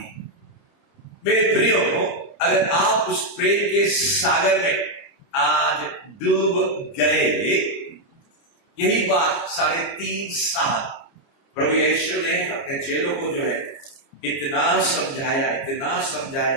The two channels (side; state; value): right; late; 29 ms